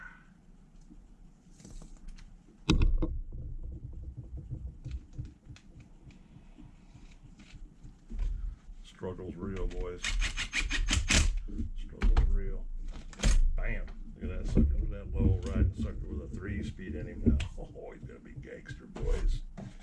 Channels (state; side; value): identical; both; correlation 1.00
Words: Struggle's real, boys. Struggle's real. Bam. Look at that sucker. Look at that low riding sucker with a 3-speed in him now. Oh, he's gonna be gangster, boys.